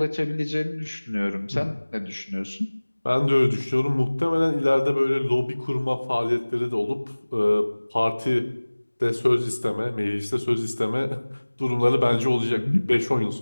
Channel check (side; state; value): both; inverted; correlation -1.00